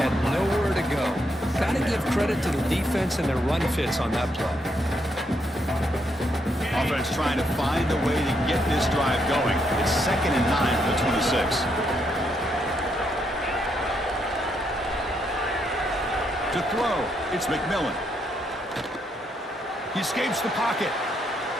nowhere to go. Got to give credit to the defense and their run fits on that play. offense trying to find a way to get this drive going. It's 2nd and 9 for the 26. To throw, it's McMillan. He escapes the pocket.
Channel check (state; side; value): normal; both; correlation 0.77